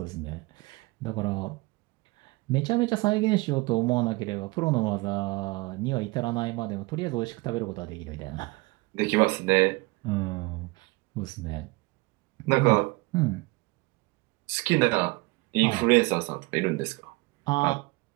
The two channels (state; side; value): quieter; left; 23.8 dB